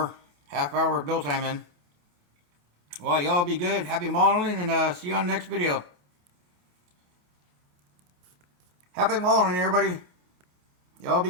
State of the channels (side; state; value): left; late; 28 ms